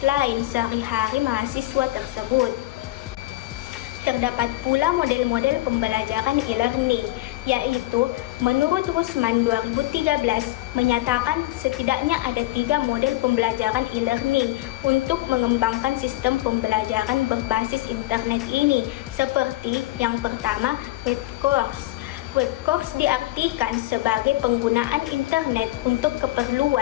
lain sehari-hari mahasiswa tersebut. Terdapat pula model-model pembelajaran e-learning, yaitu menurut Rusman 2013 menyatakan setidaknya ada 3 model pembelajaran e-learning untuk mengembangkan sistem pembelajaran berbasis internet ini, seperti yang pertama, web course. Web course diartikan sebagai penggunaan internet untuk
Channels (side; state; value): right; quieter; 18.0 dB